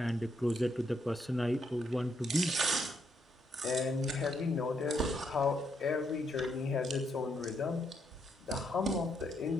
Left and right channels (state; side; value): normal; both; correlation 0.76